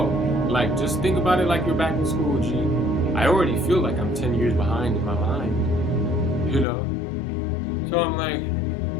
like, just think about it like you're back in school, G. I already feel like I'm 10 years behind in my mind, you know? So I'm like,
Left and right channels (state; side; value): drops out; right; at 6.7 s